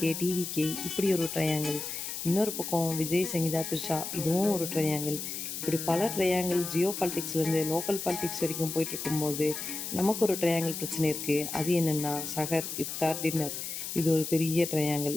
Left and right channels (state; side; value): noise; left; hiss, 6 dB below the sound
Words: டிவிகே இப்படி ஒரு ட்ரையாங்கிள். இன்னொரு பக்கம் விஜய், சங்கீதா, த்ரிஷா இதுவும் ஒரு ட்ரையாங்கிள். இப்படி பல ட்ரையாங்கிள் ஜியோ பாலிட்டிக்ஸ்லேருந்து லோக்கல் பாலிட்டிக்ஸ் வரைக்கும் போயிட்டு இருக்கும்போது நமக்கு ஒரு ட்ரையாங்கிள் பிரச்சனை இருக்குது. அது என்னென்னா சஹர், இஃப்தார், டின்னர். இது ஒரு பெரிய ட்ரையாங்கிள்.